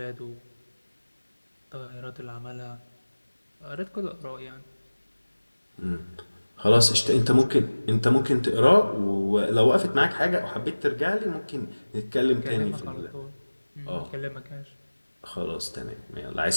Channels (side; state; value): both; inverted; correlation -1.00